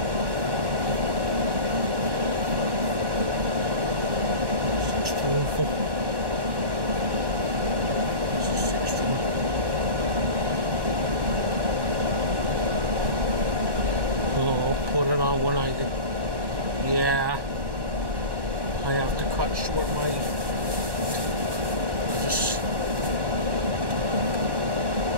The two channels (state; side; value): late; left; 1.1 ms